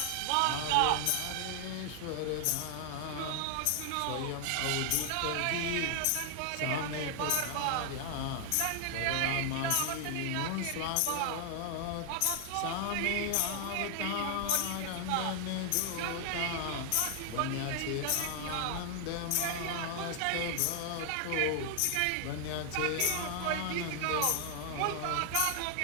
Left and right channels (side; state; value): both; different; correlation 0.00